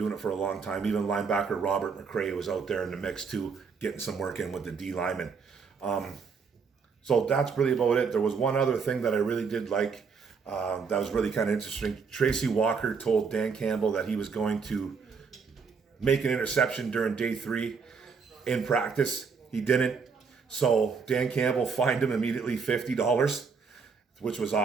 it for a long time. Even linebacker Robert McCray was out there in the mix too, getting some work in with the D linemen. So that's really about it. There was one other thing that I really did like that was really kind of interesting. Tracy Walker told Dan Campbell that he was going to make an interception during day 3 in practice. He didn't. So Dan Campbell fined him immediately $50, which was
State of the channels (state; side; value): quieter; left; 5.5 dB